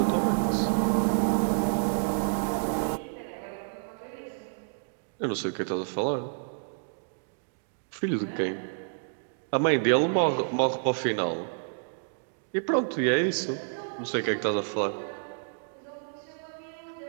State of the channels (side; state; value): left; silent; digital silence